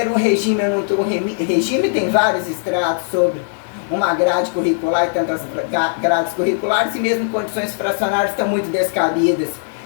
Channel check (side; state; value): right; silent; 67 dB below the other